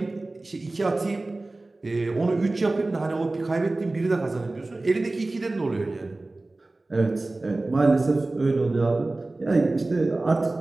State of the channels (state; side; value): quieter; left; 3.0 dB